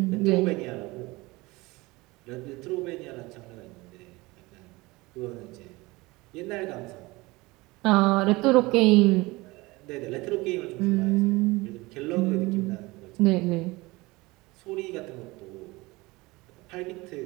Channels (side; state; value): left; quieter; 22.3 dB